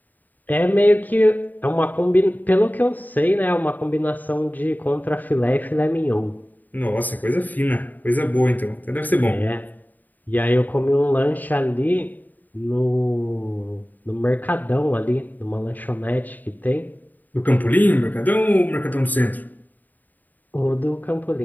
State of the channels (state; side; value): late; right; 0.085 ms